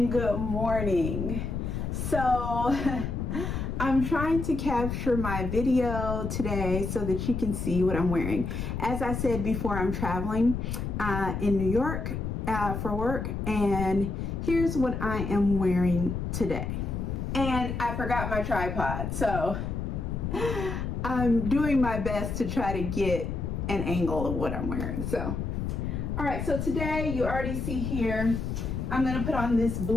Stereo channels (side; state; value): left; noise; rumble, 3 dB below the sound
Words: good morning. So I'm trying to capture my video today so that you can see what I'm wearing. As I said before, I'm traveling in New York for work, and here's what I am wearing today. And I forgot my tripod, so I'm doing my best to try to get an angle of what I'm wearing. So, all right, so today you already see here, I'm gonna put on this